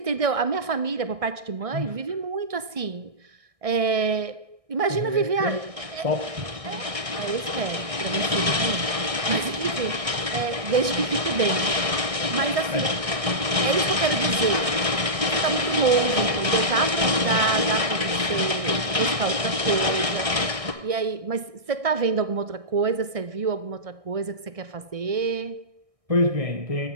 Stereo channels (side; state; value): left; late; 1.6 ms